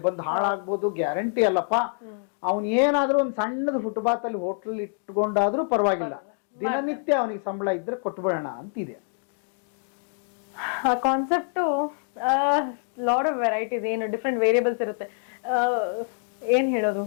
ಬಂದು ಹಾಳಾಗ್ಬೋದು, ಗ್ಯಾರಂಟಿ ಅಲ್ಲಪ್ಪ. ಅವನ್ ಏನಾದ್ರೂ ಒಂದ್ ಸಣ್ಣದ ಫುಟ್ಪಾತ್ ಅಲ್ಲಿ ಹೋಟ್ಲ್ ಇಟ್ಕೊಂಡಾದ್ರೂ ಪರವಾಗಿಲ್ಲ, ದಿನನಿತ್ಯ ಅವನಿಗೆ ಸಂಬಳ ಇದ್ರೆ ಕೊಟ್ಬಿಡೋಣ ಅಂತಿದೆ. ಆ ಕಾನ್ಸೆಪ್ಟ್ ಲಾಟ್ ಆಫ್ ವೆರೈಟೀಸ್, ಏನು ಡಿಫ್ರೆಂಟ್ ವೇರಿಯಬಲ್ಸ್ ಇರುತ್ತೆ. ಏನ್ ಹೇಳೋದು,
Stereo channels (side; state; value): right; silent; 57 dB below the other